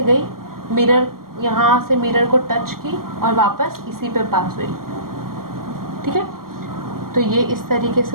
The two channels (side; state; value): left; late; 0.91 ms